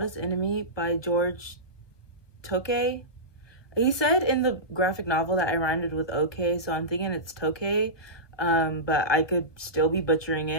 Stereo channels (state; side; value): late; right; 1.2 ms